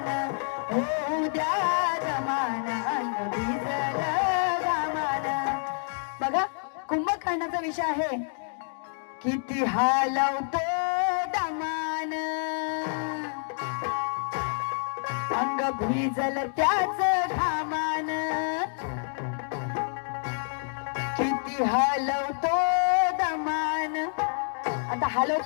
होऊ द्या दमान, अंग भिजल गामान. बघा, कुंभकर्णाचा विषय आहे. किती हालवतो दमान, अंग भिजल त्याच घामान. किती हलवतो दमान. आता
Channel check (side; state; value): right; silent; digital silence